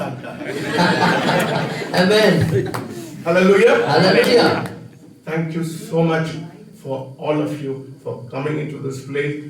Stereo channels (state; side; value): identical; both; correlation 1.00